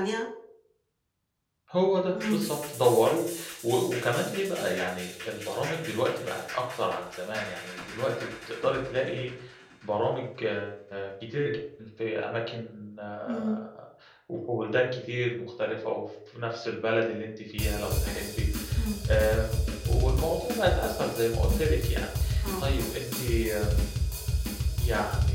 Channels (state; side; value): identical; both; correlation 1.00